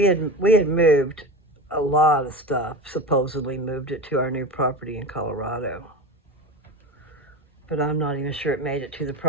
had moved a lot of stuff, supposedly moved it to our new property in Colorado. But I'm not even sure it made it to the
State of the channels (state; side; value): normal; both; correlation 0.26